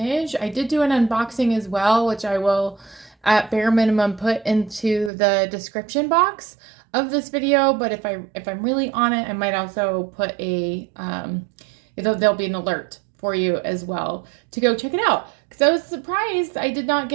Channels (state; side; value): drops out; left; at 5.1 s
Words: I did do an unboxing as well, which I will at bare minimum put into the description box of this video. But if I'm really on it, I might also put a there'll be an alert for you as well to go check it out. Because I was surprised I did not